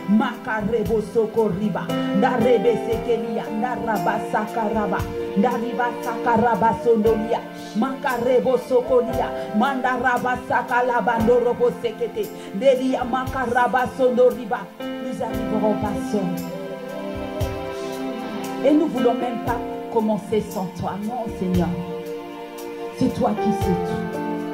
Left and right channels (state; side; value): identical; both; correlation 1.00